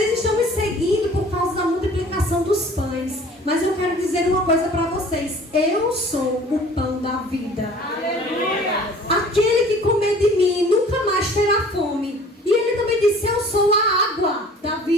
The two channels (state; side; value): normal; both; correlation 0.49